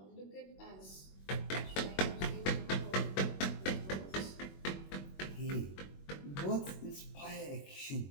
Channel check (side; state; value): right; late; 21 ms